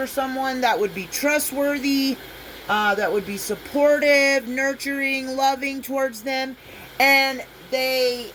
someone that would be trustworthy, that would be supportive, nurturing, loving towards them, and they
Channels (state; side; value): identical; both; correlation 1.00